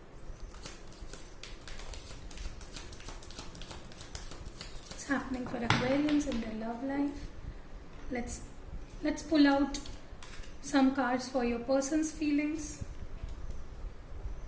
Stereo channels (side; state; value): both; identical; correlation 1.00